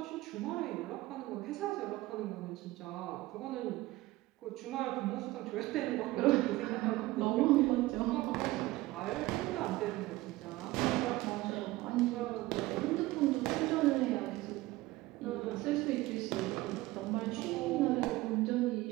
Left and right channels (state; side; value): quieter; left; 18.7 dB